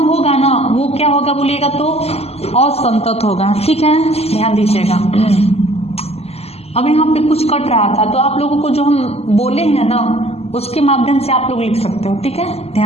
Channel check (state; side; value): late; right; 0.30 ms